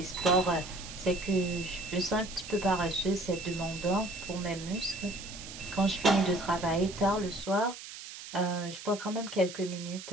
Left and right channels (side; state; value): right; noise; hiss, 12 dB below the sound